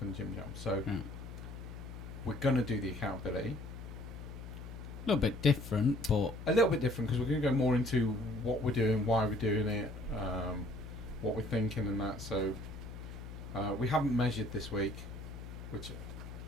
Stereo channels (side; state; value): left; noise; hum, 11 dB below the sound